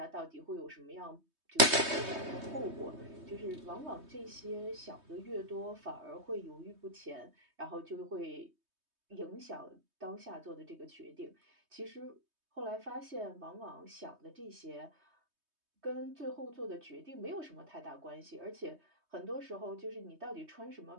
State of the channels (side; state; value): left; late; 3.2 ms